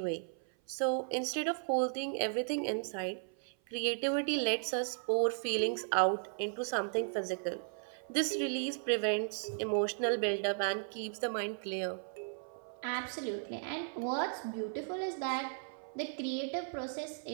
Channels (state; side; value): silent; left; 54 dB below the other